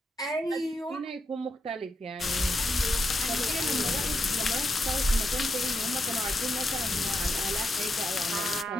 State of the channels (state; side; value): normal; both; correlation 0.83